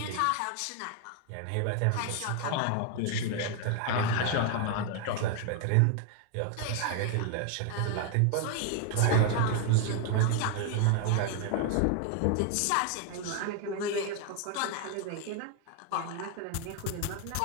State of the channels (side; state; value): both; different; correlation 0.01